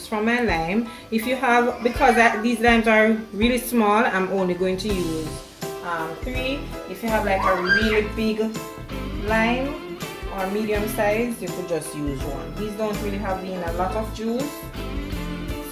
from my lime. If you have, because these limes are really small, I'm only going to use 3. If you have like a really big lime or medium size, you could just use 1. These don't really have a lot of juice,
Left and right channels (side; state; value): both; identical; correlation 1.00